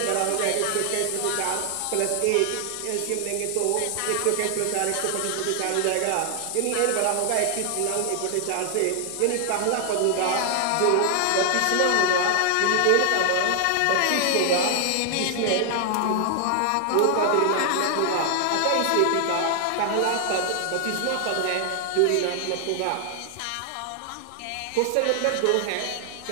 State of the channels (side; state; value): both; different; correlation 0.00